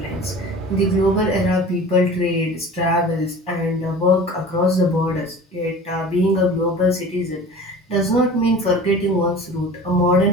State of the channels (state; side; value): normal; both; correlation 0.39